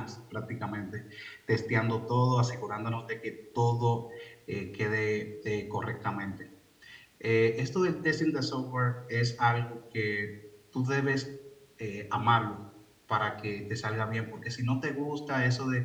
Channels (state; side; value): identical; both; correlation 1.00